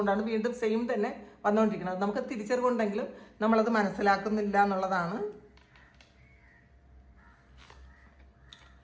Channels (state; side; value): identical; both; correlation 1.00